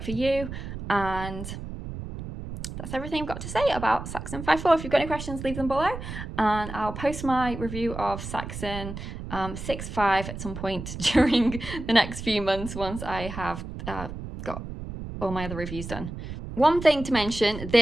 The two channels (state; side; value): noise; right; rumble, 9 dB below the sound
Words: for you. And that's everything I've got to say about Saxon 5.4. If you've got any questions, leave them below. And I'll post my review of Saxon 6.5 at some point during the next few months once I have got all my other reviews done. One thing to mention,